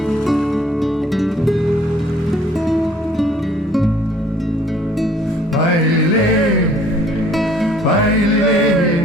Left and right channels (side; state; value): both; normal; correlation 0.58